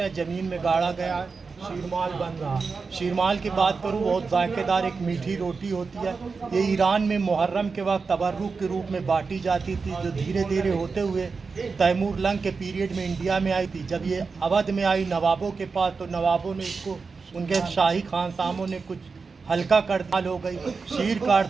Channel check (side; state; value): left; quieter; 4.7 dB